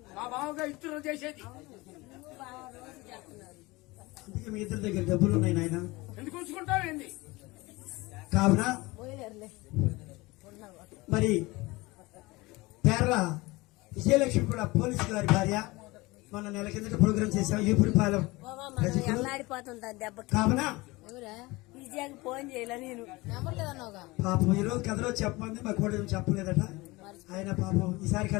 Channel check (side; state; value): right; quieter; 22.1 dB